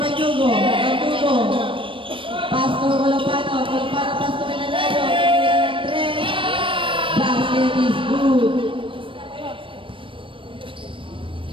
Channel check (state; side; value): late; left; 0.25 ms